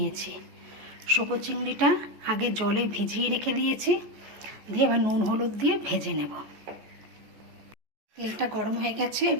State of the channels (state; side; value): late; left; 14 ms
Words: শোকো চিংড়িটা আগে জলে ভিজিয়ে রেখে দিয়েছি, দিয়ে এবার নুন হলুদ দিয়ে ভেজে নেব। তেলটা গরম হয়ে গেছে,